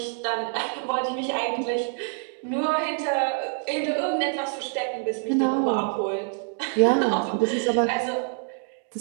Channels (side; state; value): left; silent; 58 dB below the other